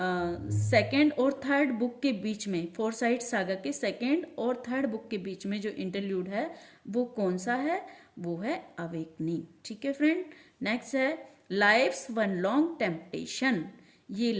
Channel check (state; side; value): identical; both; correlation 1.00